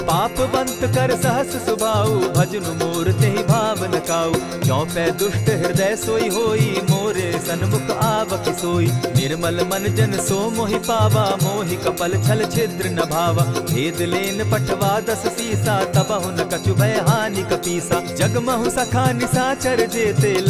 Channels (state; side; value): identical; both; correlation 1.00